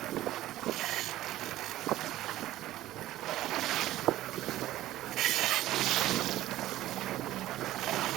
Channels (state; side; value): quieter; left; 14.9 dB